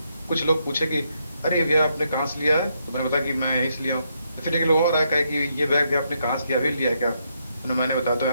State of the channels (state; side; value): inverted; both; correlation -0.78